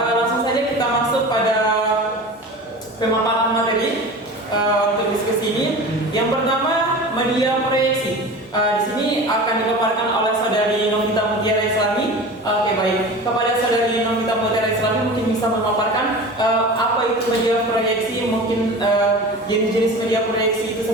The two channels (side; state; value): both; normal; correlation 0.34